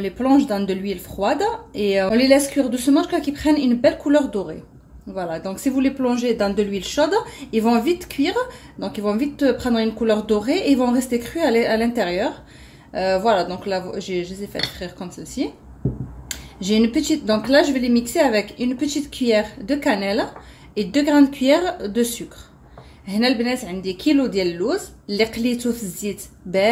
les plonge dans de l'huile froide et on les laisse cuire doucement jusqu'à qu'ils prennent une belle couleur dorée. Voilà, donc si vous les plongez dans de l'huile chaude, ils vont vite cuire, donc ils vont vite prendre une couleur dorée et ils vont rester crus à l'intérieur. Voilà, donc là je les ai fait frire comme ceci. J'ai une petite, donc là je vais les mixer avec une petite cuillère de cannelle et 2 grandes cuillères de sucre. هنا البنات عندي كيلو ديال اللوز اللي قليته في الزيت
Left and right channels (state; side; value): identical; both; correlation 1.00